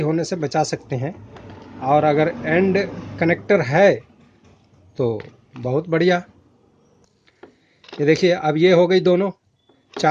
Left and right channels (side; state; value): both; identical; correlation 1.00